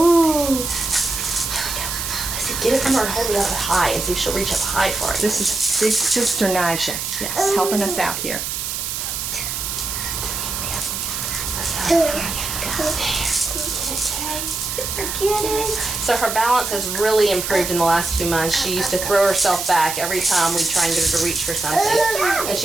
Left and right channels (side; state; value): right; noise; hiss, 4 dB below the sound